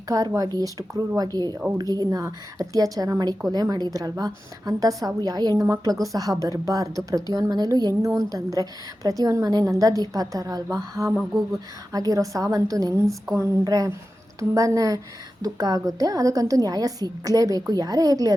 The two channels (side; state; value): both; normal; correlation 0.93